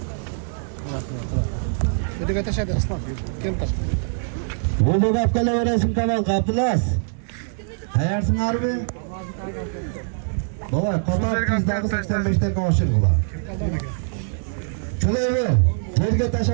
Ödük ateşe de ıslan. Kim taş? Oldu kapkala veresin tamam Abdülaz. Hayarsın harbi. Baba kapat bizden 85'te konuşur ulan. Çöleyi ver. Yerge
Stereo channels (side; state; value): left; silent; digital silence